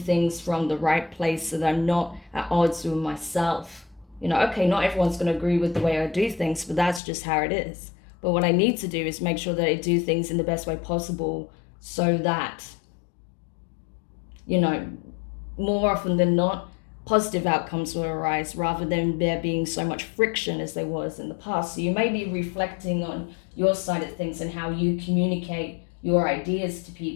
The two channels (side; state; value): right; drops out; at 7.0 s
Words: from the right place, so that I'm not at odds with myself. You know, okay, not everyone's going to agree with the way I do things, but that's just how it is. But what I need to do is make sure that I do things in the best way possible, so that, you know, more often than not, positive outcomes will arise rather than there being so much friction as there was in the past. So you may be reflecting on your side of things and how you communicate your ideas to